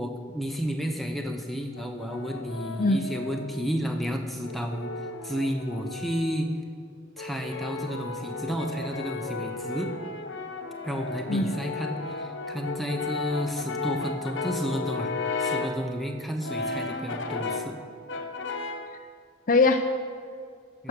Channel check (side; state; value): both; normal; correlation 0.44